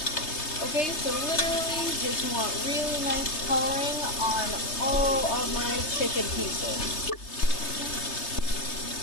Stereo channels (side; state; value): right; late; 3.3 ms